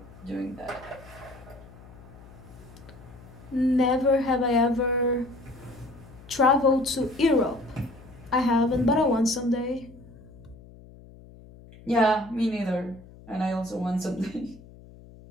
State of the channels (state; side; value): noise; left; hum, 20 dB below the sound